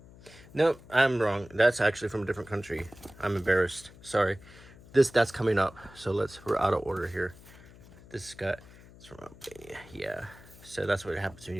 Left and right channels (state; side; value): noise; left; hum, 21 dB below the sound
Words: Nope, I'm wrong. That's actually from a different country. I'm embarrassed. Sorry. That's coming up. So we're out of order here. It's from Albania. Yeah. So that's what happens when